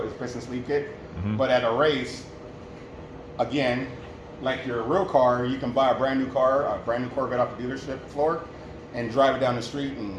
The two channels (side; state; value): both; identical; correlation 1.00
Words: It's piston sleeve kit. Mm-hmm. But at a race, again, like your real car, you can buy a brand new car, a brand new Corvette off the dealership floor, and drive it down the street